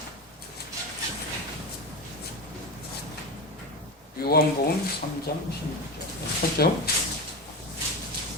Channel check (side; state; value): both; normal; correlation 0.21